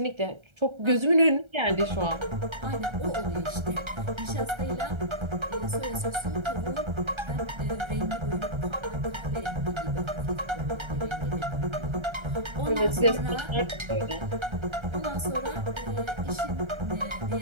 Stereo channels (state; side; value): late; left; 1.3 ms